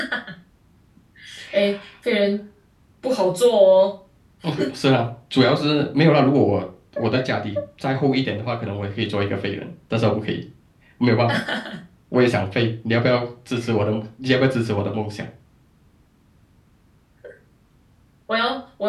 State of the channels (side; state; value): both; identical; correlation 1.00